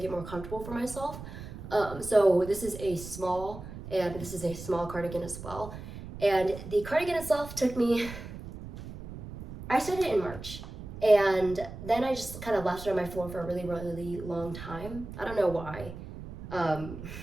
it more comfortable for myself. So this is a small, and this is a small cardigan as well. And the cardigan itself took me, I started it in March. And then I just kind of left it on my floor for a really long time. I don't know why. I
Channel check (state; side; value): noise; right; rumble, 12 dB below the sound